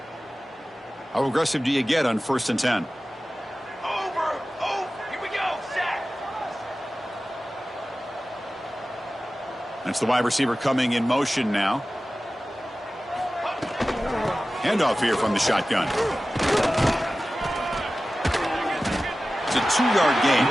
How aggressive do you get on 1st and 10? Here we go, set. That's the wide receiver coming in motion now. Handoff here from the shotgun. It's a 2-yard gain.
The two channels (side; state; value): both; normal; correlation 0.95